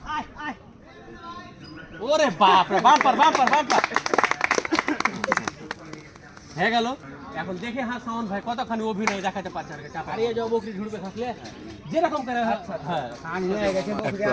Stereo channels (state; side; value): identical; both; correlation 1.00